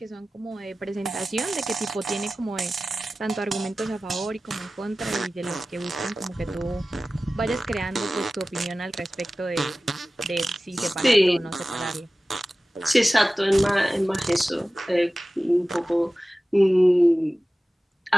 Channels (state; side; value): normal; both; correlation 0.96